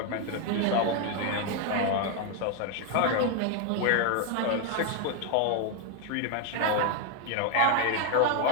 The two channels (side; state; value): both; different; correlation 0.01